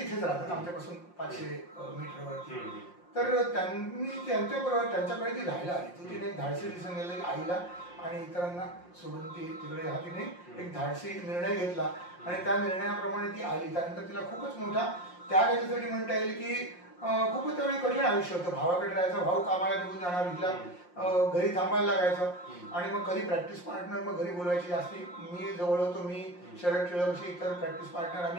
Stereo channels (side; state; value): right; late; 5.6 ms